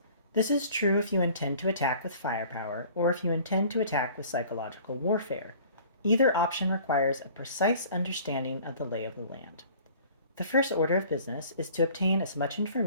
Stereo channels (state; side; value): inverted; both; correlation -0.50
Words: This is true if you intend to attack with firepower or if you intend to attack with psychological warfare. Either option requires a precise understanding of the lay of the land. The first order of business is to obtain as much